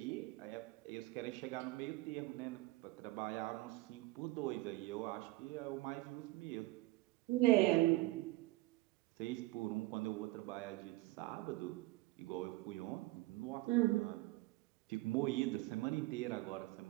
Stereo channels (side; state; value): left; quieter; 19.7 dB